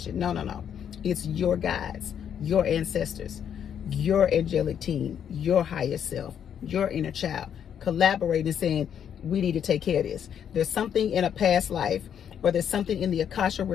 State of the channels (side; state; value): right; quieter; 8.7 dB